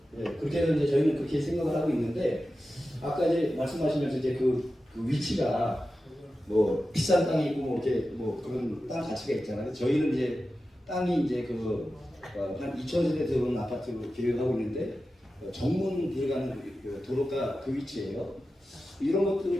예, 그렇게는 이제 저희는 그렇게 생각을 하고 있는데 아까 이제 말씀하시면서 이제 그 위치가 뭐 비싼 땅이 있고 뭐 이렇게 뭐 그런 땅 가치가 있잖아요. 저희는 이제 땅이 이제 한 2,000세대 들어오는 아파트로 계획하고 있는데 정문 들어가는 도로가 그 위치예요. 이런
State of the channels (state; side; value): normal; both; correlation 0.93